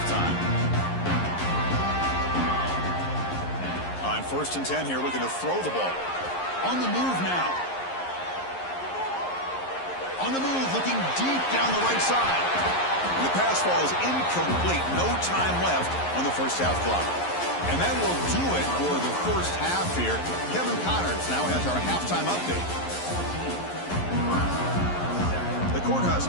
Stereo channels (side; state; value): right; late; 11 ms